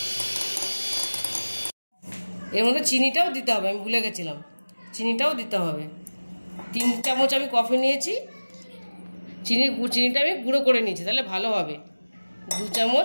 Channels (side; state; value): both; inverted; correlation -1.00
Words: এর মধ্যে চিনিটাও দিতে হবে, আমি ভুলে গেছিলাম, চিনিটাও দিতে হবে। 3 চামচ আমি কফি নিয়েছি, চিনিটা আমি গুঁড়ো করে নিয়েছি, তাহলে ভালো হবে। 2